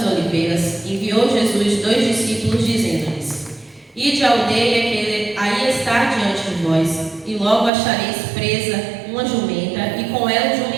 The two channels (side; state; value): left; drops out; at 7.7 s